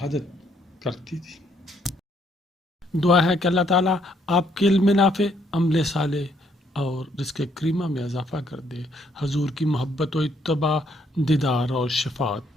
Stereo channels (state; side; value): normal; both; correlation 0.70